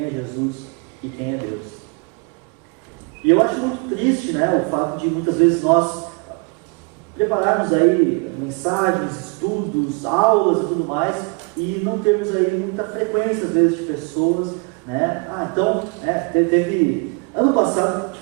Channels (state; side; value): quieter; left; 33.1 dB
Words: é Jesus e quem é Deus. E eu acho muito triste, né, o fato de muitas vezes nós prepararmos aí mensagens, estudos, aulas e tudo mais, e não termos aí muita frequência às vezes de pessoas, né? Teve ano passado